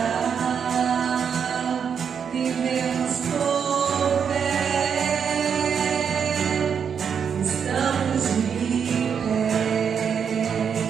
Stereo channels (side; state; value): left; quieter; 7.1 dB